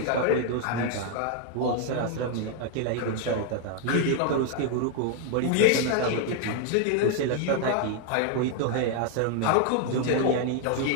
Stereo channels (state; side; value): different; both; correlation 0.00